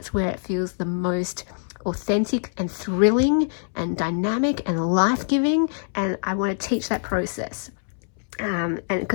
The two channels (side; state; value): right; silent; 62 dB below the other